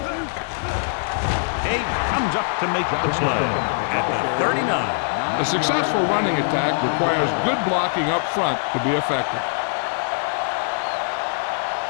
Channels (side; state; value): right; silent; digital silence